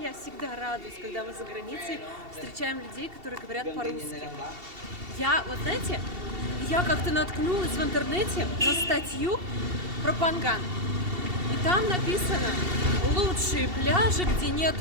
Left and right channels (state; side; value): late; left; 2.7 ms